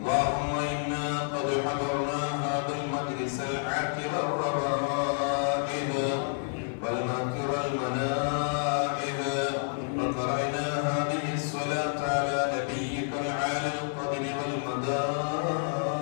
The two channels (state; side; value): silent; right; 58 dB below the other